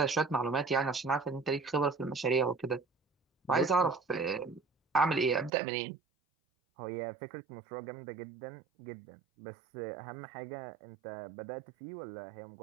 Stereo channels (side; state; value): left; drops out; at 5.5 s